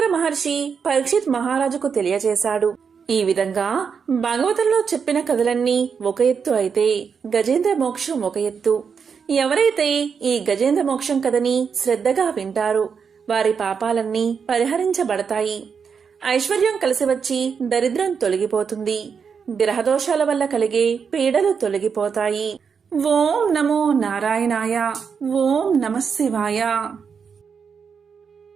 మహర్షి పరీక్షిత్ మహారాజుకు తెలియజేశాడు. ఈ విధంగా భాగవతంలో చెప్పిన కథలన్నీ ఒక ఎత్తు అయితే గజేంద్ర మోక్షం ఒక ఎత్తు. ఎవరైతే ఈ గజేంద్ర మోక్షం కథని శ్రద్ధగా వింటారో వారి పాపాలన్నీ పరిహరించబడతాయి. ఐశ్వర్యం కలిసి వచ్చి దరిద్రం తొలగిపోతుంది. గ్రహదోషాల వల్ల కలిగే పీడలు తొలగిపోతాయి. ఓం నమో నారాయణాయ. ఓం నమః శివాయ.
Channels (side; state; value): left; quieter; 6.3 dB